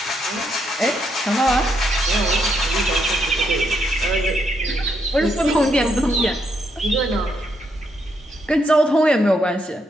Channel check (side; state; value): both; normal; correlation 0.78